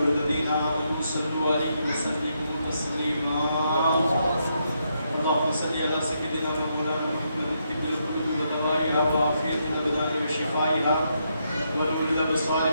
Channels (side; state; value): both; inverted; correlation -0.79